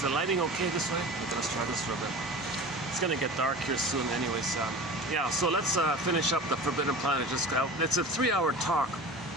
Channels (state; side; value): normal; both; correlation 0.35